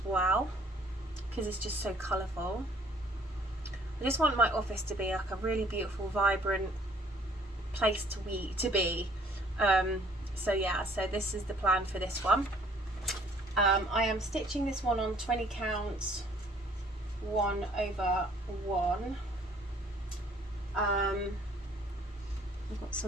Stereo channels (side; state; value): both; normal; correlation 0.57